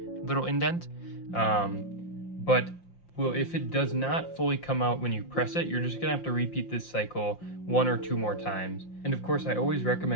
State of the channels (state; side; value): late; right; 5.7 ms